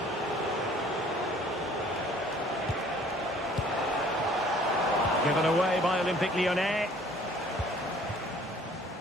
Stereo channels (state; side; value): normal; both; correlation 0.55